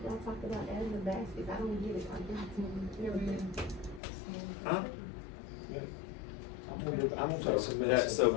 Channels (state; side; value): drops out; right; at 4.0 s